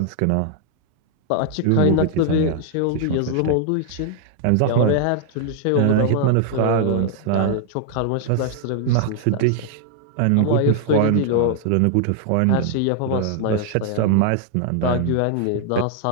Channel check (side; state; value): both; different; correlation 0.00